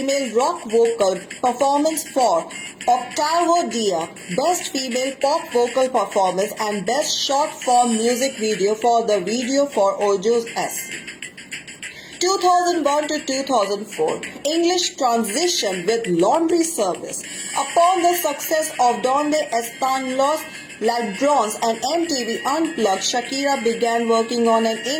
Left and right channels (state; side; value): identical; both; correlation 1.00